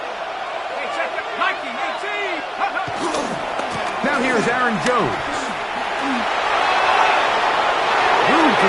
Now here's Aaron Jones. Room to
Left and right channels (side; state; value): both; identical; correlation 1.00